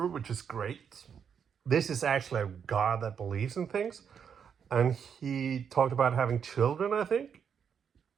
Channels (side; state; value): left; quieter; 7.3 dB